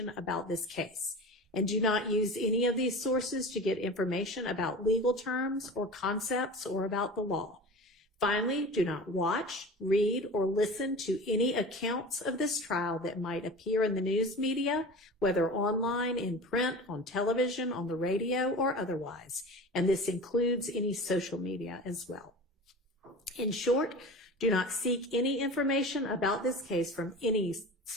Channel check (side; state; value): both; normal; correlation 0.34